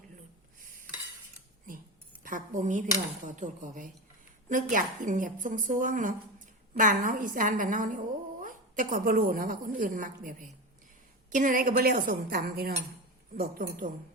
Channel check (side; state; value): both; normal; correlation 0.22